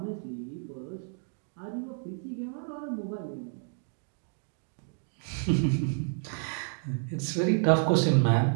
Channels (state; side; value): silent; left; 57 dB below the other